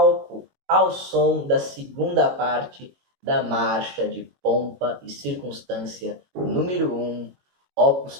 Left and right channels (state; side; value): late; left; 22 ms